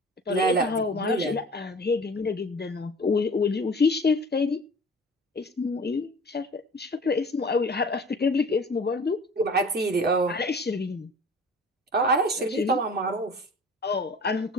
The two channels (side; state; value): both; normal; correlation 0.43